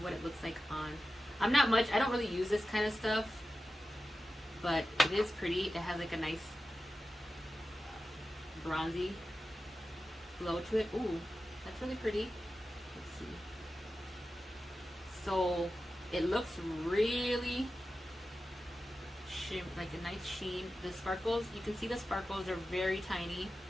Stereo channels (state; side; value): normal; both; correlation 0.93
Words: it looks like on. I don't really use this kind of stuff, but it is pretty. It has like a nice bronzy glow to it. Ooh, that's really pretty. Let's see. So it looks really like a nice sheen. The sparkles, you can see the sparkles are very tiny.